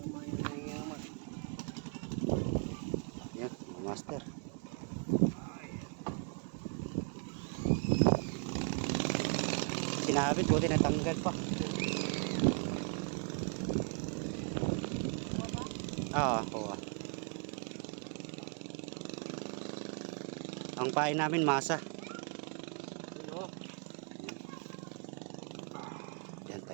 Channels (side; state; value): left; quieter; 38.8 dB